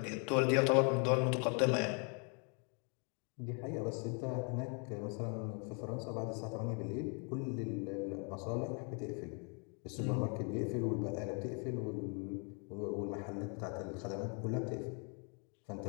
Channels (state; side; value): quieter; right; 37.5 dB